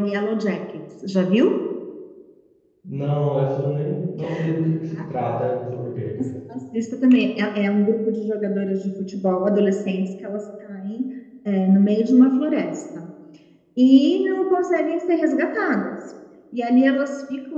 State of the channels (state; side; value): identical; both; correlation 1.00